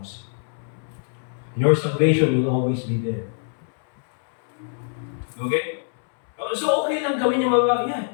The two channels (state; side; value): silent; right; 62 dB below the other